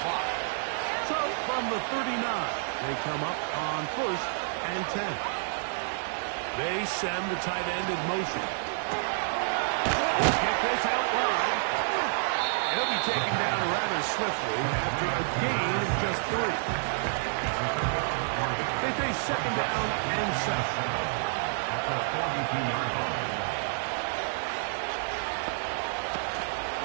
clock. So from the 39, they come up on 1st and 10. They send the tight end in motion. They'll get this out wide. He'll be taken down rather swiftly after a gain of just 3. They face 2nd down and 7. At the 42-yard line.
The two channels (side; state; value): left; silent; 58 dB below the other